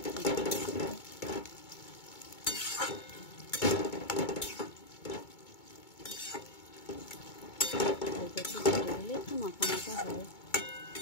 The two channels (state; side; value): late; right; 2.2 ms